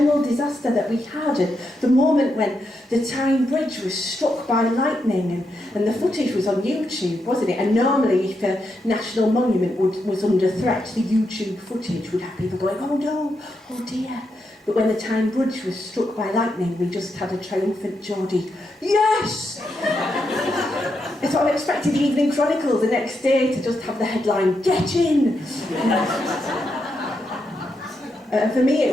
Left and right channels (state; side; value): normal; both; correlation 0.83